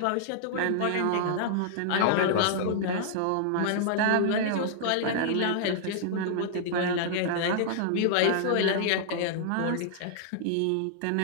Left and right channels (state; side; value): different; both; correlation -0.01